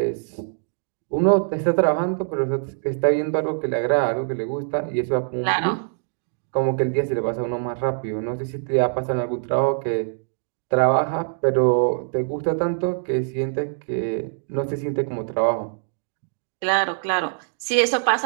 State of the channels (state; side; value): silent; left; digital silence